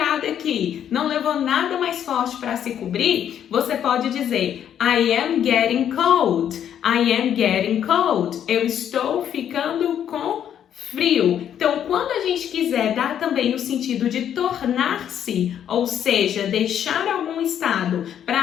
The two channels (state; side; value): quieter; right; 9.6 dB